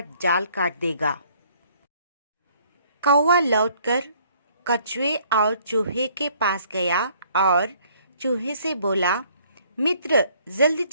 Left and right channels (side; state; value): both; inverted; correlation -0.61